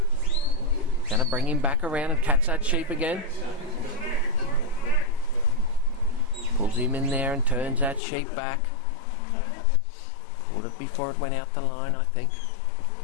Going to bring him back around and catch that sheep again. Pulls him in there and turns that sheep back. Caught it before it went out the line, I think.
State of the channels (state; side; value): drops out; right; at 8.0 s